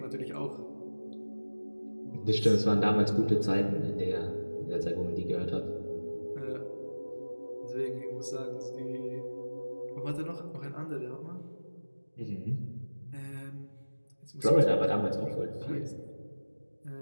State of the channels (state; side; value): inverted; both; correlation -1.00